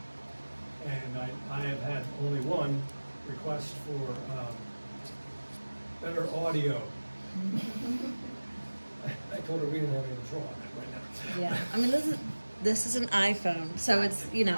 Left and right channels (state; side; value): inverted; both; correlation -1.00